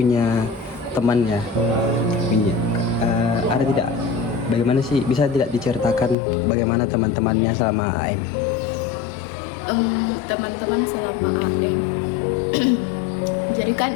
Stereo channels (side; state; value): right; drops out; at 6.2 s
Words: teman ya. Ada tidak? Bagaimana sih, bisa tidak diceritakan bagaimana teman-temannya selama AM? Teman-teman selama AM. Jadi